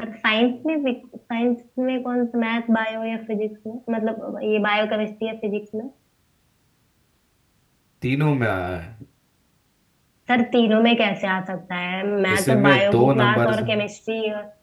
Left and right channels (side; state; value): both; identical; correlation 1.00